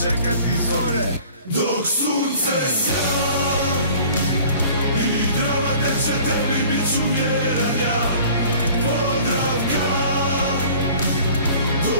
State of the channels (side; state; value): both; inverted; correlation -0.48